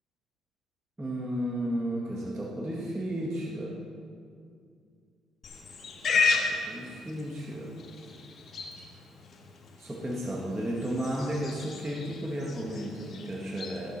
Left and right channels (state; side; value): normal; both; correlation 0.79